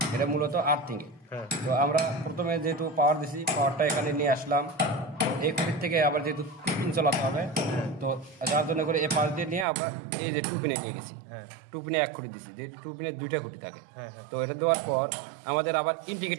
এটা মূলত আর্থিং এ। তো আমরা প্রথমে যেহেতু পাওয়ার দিছি, পাওয়ারটা এখানে নিয়ে আসলাম, এই খুঁটির থেকে আবার যেহেতু 2 পিন চালাতে হবে, তো যার জন্য করে এই পাশ দিয়ে নিয়ে আমরা এই যে 2 পিনে দিয়ে দিছি, 2 পিনে এক খুঁটি দিছি, যে 2 পিনে 2টা খুঁটি থাকে। তো এটা দেওয়ার পর আমাদের আবার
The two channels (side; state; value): left; drops out; at 9.7 s